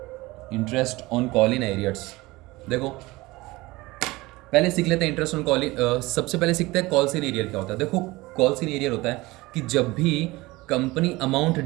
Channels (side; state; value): left; quieter; 20.9 dB